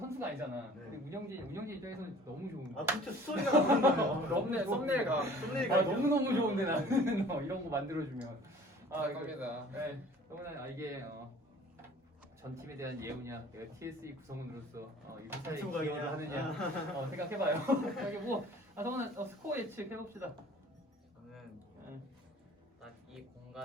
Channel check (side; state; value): both; normal; correlation 0.49